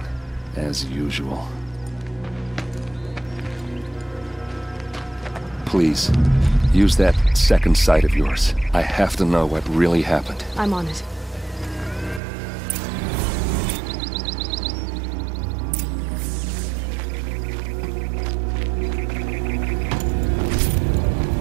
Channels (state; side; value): drops out; left; at 12.2 s